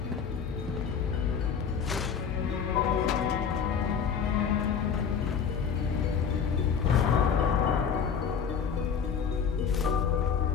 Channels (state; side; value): quieter; right; 6.9 dB